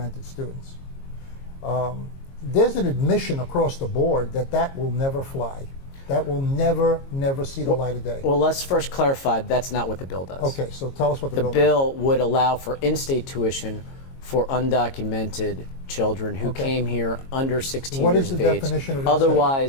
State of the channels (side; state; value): right; late; 22 ms